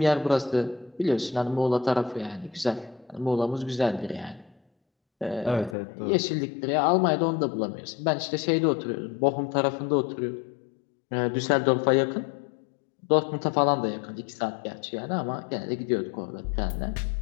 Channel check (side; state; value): right; drops out; at 5.8 s